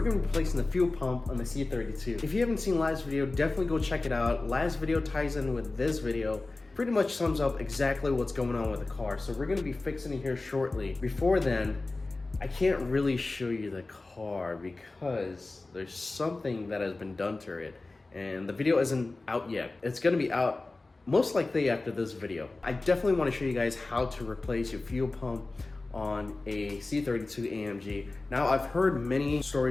going to be replacing the fuel pump on the C32. If you haven't seen last video, definitely go check it out. Last video ties in with this video. Pretty much sums up exactly what's going on with the car. So we're going to be fixing it here shortly. Before then, I can't really show you the car because there's something that has been done to it. And the video isn't out yet. It's going to be out most likely after this video. I definitely want to show you guys how to replace your fuel pump on a C32 AMG. Now, I've heard many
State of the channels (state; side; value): quieter; right; 3.3 dB